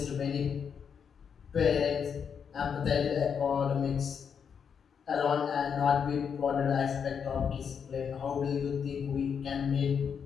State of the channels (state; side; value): quieter; right; 7.0 dB